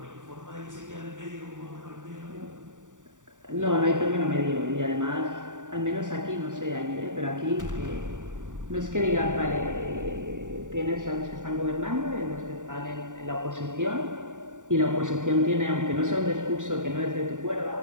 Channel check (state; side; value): late; left; 0.86 ms